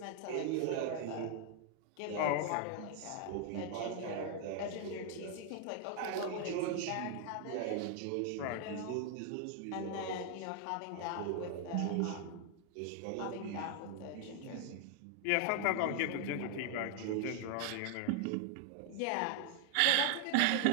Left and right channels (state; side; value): different; both; correlation 0.00